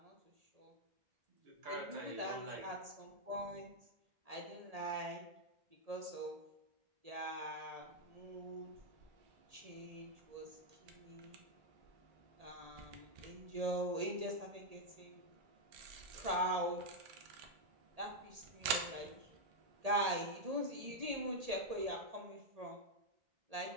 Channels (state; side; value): late; left; 1.8 ms